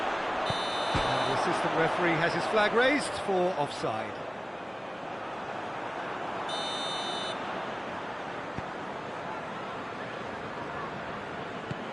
the assistant referee has his flag raised for offside.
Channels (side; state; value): both; identical; correlation 1.00